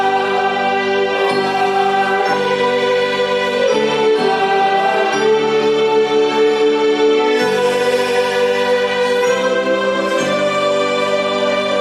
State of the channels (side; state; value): right; noise; hum, 29 dB below the sound